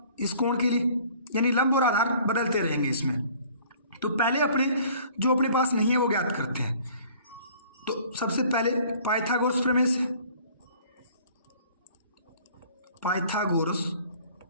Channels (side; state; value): both; inverted; correlation -0.52